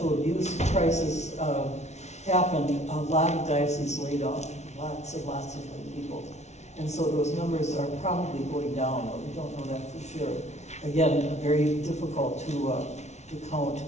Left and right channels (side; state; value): right; late; 0.32 ms